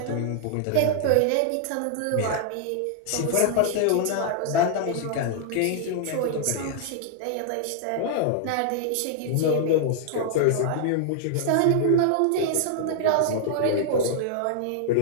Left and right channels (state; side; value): different; both; correlation -0.01